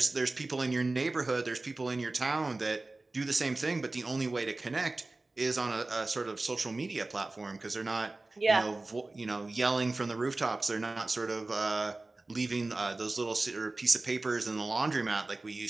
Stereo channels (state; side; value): quieter; left; 3.1 dB